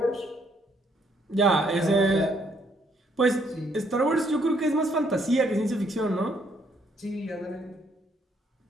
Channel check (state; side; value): normal; both; correlation 0.69